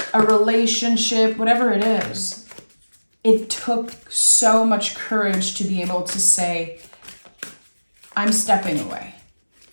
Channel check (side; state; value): both; inverted; correlation -1.00